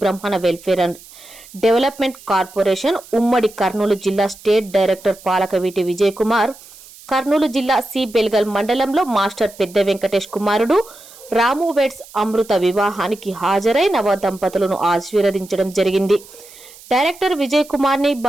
బ్రహ్మణ వెల్ఫేర్ అండ్ డెవలప్మెంట్ కార్పొరేషన్ ఉమ్మడి కర్నూలు జిల్లా స్టేట్ డైరెక్టర్ పాలకవీటి విజయ్ కుమార్ కర్నూలు జిల్లా సి బెల్గల్ మండలంలో మాస్టర్ పెద్ద వెంకటేష్ కుమారుడు రాము వెడ్స్ అమృత వివాహానికి హాజరై నవ దంపతులను ఆశీర్వదించడం జరిగింది. డైరెక్టర్ విజయ్ కుమార్ ని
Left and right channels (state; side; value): noise; right; hiss, 21 dB below the sound